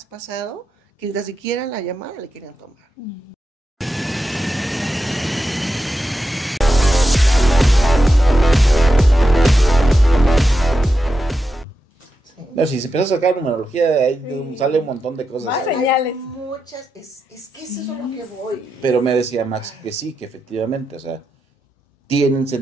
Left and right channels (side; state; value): both; normal; correlation 0.87